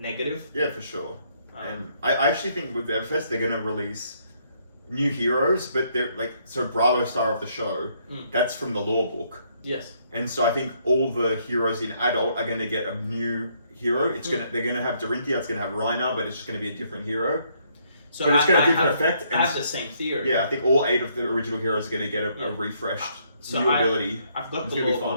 Yeah, for sure. And I actually think with Everfest they're going to release new heroes, but they're like, so Bravo Star of the Show, that's from the lore book. Yes. And so I think all the heroes in Adult are going to get a new hero. They're going to have Dorinthia, it's going to have Reiner, but it's just going to be a different hero. So but it's got a different effect. I have the same theory. Yeah, I think all 8 of the original heroes are going to get a refreshed new ability. I've got the lore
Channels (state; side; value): inverted; both; correlation -0.70